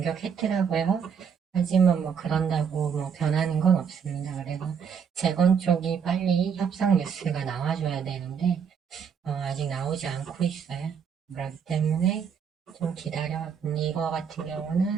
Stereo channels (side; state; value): left; quieter; 6.9 dB